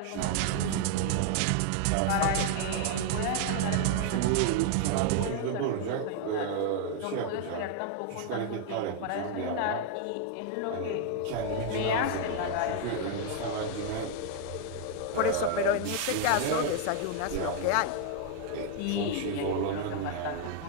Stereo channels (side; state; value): both; different; correlation 0.00